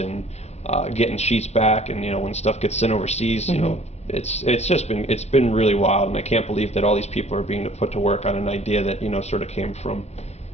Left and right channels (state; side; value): late; right; 0.31 ms